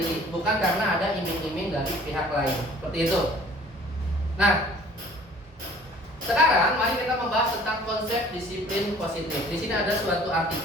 bukan karena ada iming-iming dari pihak lain. Seperti itu. Nah, sekarang mari kita membahas tentang konsep disiplin positif. Di sini ada suatu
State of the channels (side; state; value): both; normal; correlation 0.52